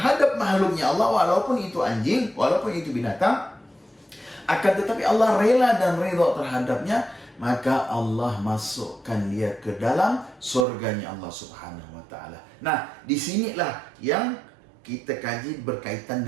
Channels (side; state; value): left; drops out; at 10.7 s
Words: makhluknya Allah, walaupun itu anjing, walaupun itu binatang. Akan tetapi Allah rela dan ridho terhadapnya, maka Allah masukkan dia ke dalam surganya Allah Subhanahu wa Ta'ala. Nah, disinilah yang kita kaji berkaitan